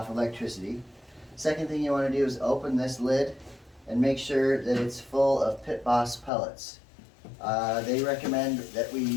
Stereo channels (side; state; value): right; drops out; at 6.3 s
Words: electricity. Second thing you want to do is open this lid and make sure that it's full of Pitboss pellets. They recommend that we